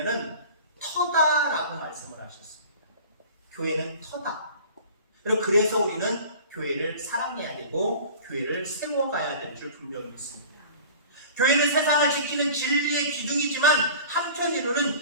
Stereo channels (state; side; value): inverted; both; correlation -0.41